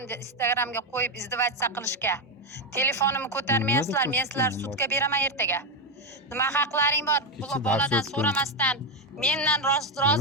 Instagramga qo'yib izdivatsiya qilishga? Telefonimni ko'tarmayapsizlar, men sizlar sudga beraman ertaga. Nima haqlaring bor? Bu boladan so'ramasdan, mendan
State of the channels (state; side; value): normal; both; correlation 0.08